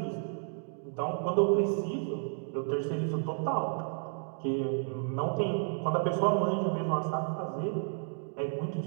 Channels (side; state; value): left; silent; 57 dB below the other